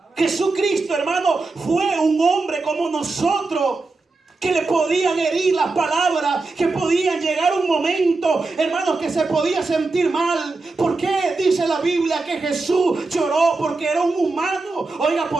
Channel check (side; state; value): left; quieter; 3.6 dB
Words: Jesucristo, hermano, fue un hombre como nosotros, que le podían herir las palabras, que podían llegar un momento, hermanos, que se podía sentir mal. ¿Por qué dice la Biblia que Jesús lloró? Porque era un humano. Oiga,